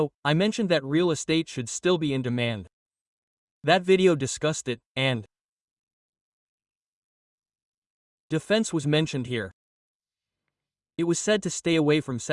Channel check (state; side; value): identical; both; correlation 1.00